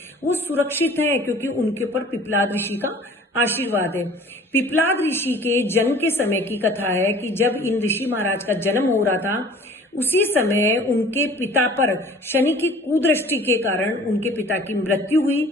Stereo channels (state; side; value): normal; both; correlation 0.48